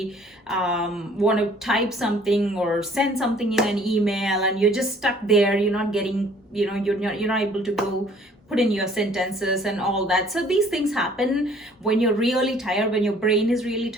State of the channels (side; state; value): both; normal; correlation 0.56